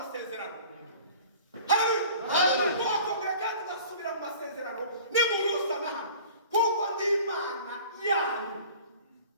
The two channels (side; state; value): both; inverted; correlation -0.45